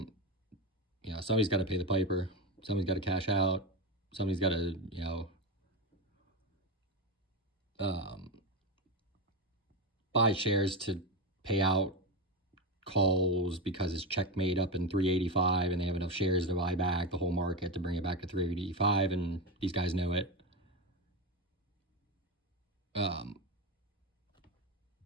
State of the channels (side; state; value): both; normal; correlation 0.15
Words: got to pay the piper. Somebody's got to cash out. Somebody's got to, buy shares to pay out calls because it's checkmate up in 385 and they have enough shares to buy back the whole market to bring it back to 385, and these guys know it.